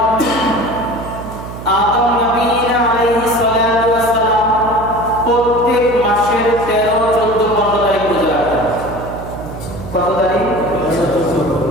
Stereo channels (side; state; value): right; noise; hum, 11 dB below the sound